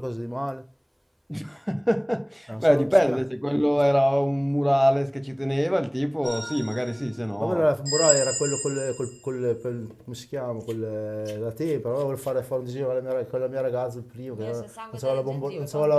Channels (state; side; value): identical; both; correlation 1.00